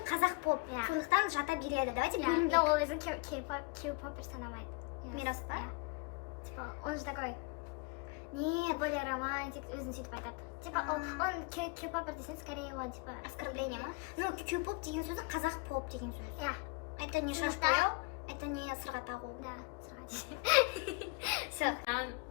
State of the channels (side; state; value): right; quieter; 27.2 dB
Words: қазақ поп. Сондықтан жата береді. Давайте бөлінбейік. Но ол өзі Q-поп санамайды. Мирас па? Типа, он же такой Нет, более романтик, өзін сөйтіп айтады. Типа, он Q-попер десең, скорее он, типа, оскорбление ма? Ну, Q-поп деген сөзі қазақ поп деген сөз. Я. Это не шаш бояу, это не сырға тағу. Да, сырға. Все.